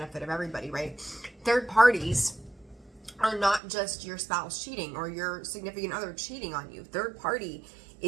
of everybody, right? Third parties are not just your spouse cheating or your significant other cheating on you. Third party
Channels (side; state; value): left; drops out; at 3.6 s